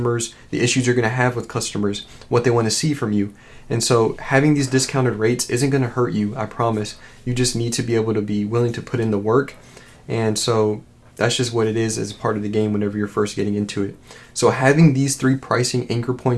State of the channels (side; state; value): both; identical; correlation 1.00